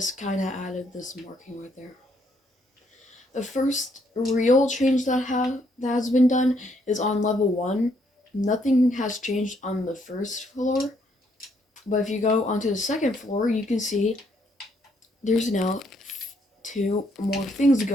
kind of added this marking right there. The first real change that has been done is on level 1. Nothing has changed on the first floor. But if you go onto the second floor, you can see there's now 2 more things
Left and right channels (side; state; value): both; normal; correlation 0.71